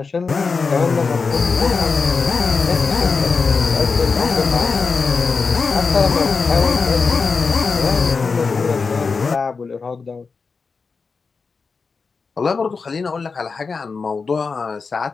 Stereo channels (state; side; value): quieter; right; 4.8 dB